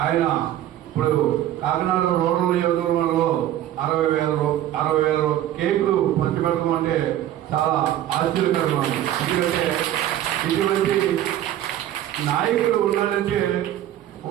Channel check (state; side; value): quieter; left; 12.5 dB